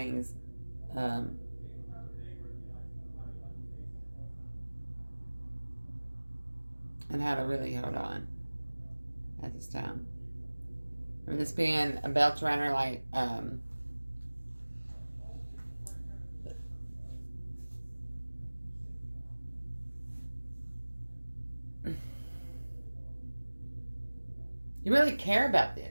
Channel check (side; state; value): both; inverted; correlation -1.00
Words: And how to really hold on at this time. Or this being a belt around her, like, you really care about